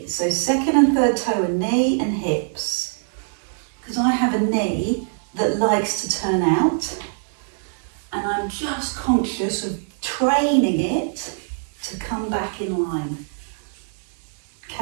So second and third toe are knee and hips, because I have a knee that likes to turn out, and I'm just conscious of training it to come back in line.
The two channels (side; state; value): left; silent; digital silence